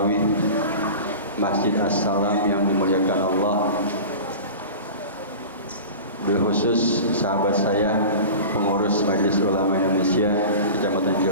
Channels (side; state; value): both; inverted; correlation -0.34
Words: Masjid As-Salam yang dimuliakan Allah, berkhusus sahabat saya pengurus Majelis Ulama Indonesia Kecamatan